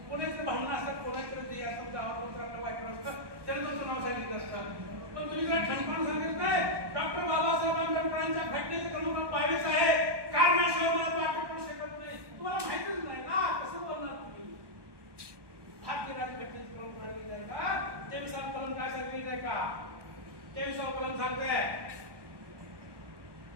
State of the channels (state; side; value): late; left; 1.2 ms